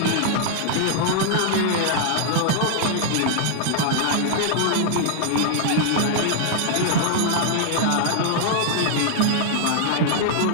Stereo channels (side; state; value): both; different; correlation 0.00